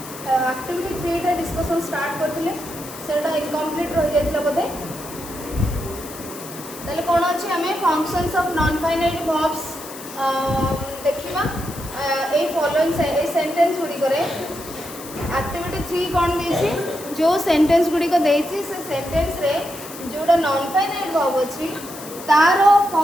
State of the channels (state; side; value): noise; left; hiss, 14 dB below the sound